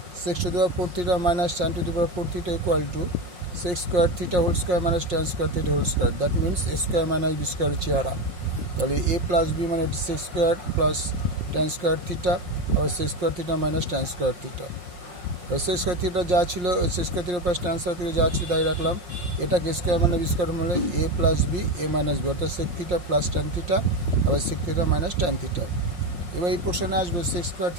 sec to the power 4 theta minus tan to the power 4 theta equal to sec square theta whole square minus tan square theta whole square, that means a square minus b square চেহারা। তাহলে a plus b মানে sec square plus tan square theta আর sec square theta minus tan square theta। sec square theta যা ছিল sec square theta plus tan square theta যা ছিল তাই রাখলাম। এটাকে স্কয়ার মানে b স্কয়ার মানে a plus b a minus b, অর্থাৎ sec theta plus tan theta আর sec theta minus tan theta। এবার এই পোর্শনে আসবে sec square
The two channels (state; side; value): late; left; 5.6 ms